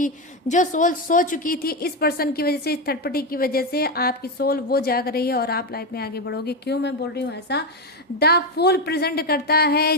सोल सो चुकी थी इस पर्सन की वजह से, इस थर्ड पार्टी की वजह से, आपकी सोल वो जाग रही है और आप लाइफ में आगे बढ़ोगे। क्यों मैं बोल रही हूँ ऐसा, द फूल प्रेजेंट करता है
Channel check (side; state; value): both; normal; correlation 0.10